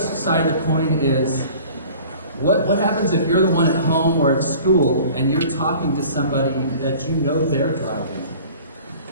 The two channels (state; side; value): inverted; both; correlation -0.45